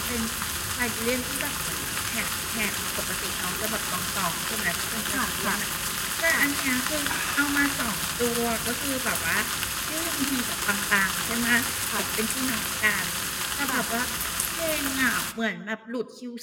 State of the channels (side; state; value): both; identical; correlation 1.00